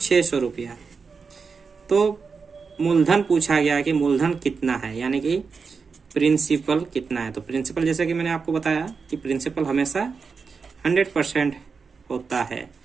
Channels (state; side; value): quieter; left; 5.2 dB